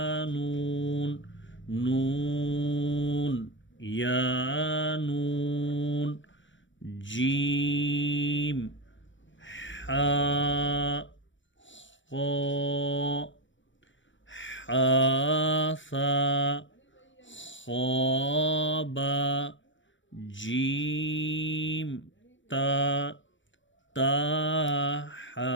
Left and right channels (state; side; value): late; right; 0.55 ms